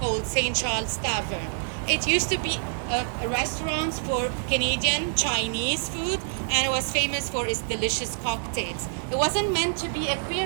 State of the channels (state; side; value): silent; left; 61 dB below the other